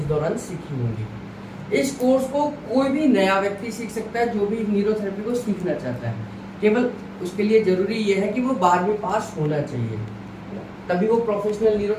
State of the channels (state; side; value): identical; both; correlation 1.00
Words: दौरान सीखी होंगी। इस कोर्स को कोई भी नया व्यक्ति सीख सकता है जो भी न्यूरोथेरेपी को सीखना चाहता है। केवल उसके लिए जरूरी ये है कि वो 12वीं पास होना चाहिए, तभी वो प्रोफेशनल